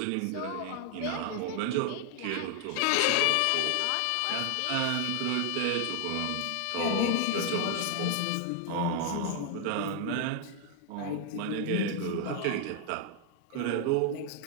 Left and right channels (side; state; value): both; different; correlation 0.00